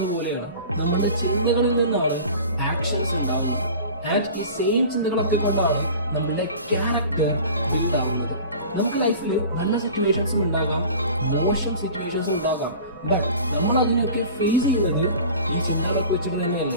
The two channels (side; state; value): both; inverted; correlation -0.40